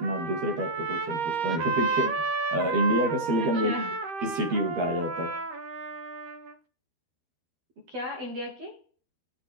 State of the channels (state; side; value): late; left; 12 ms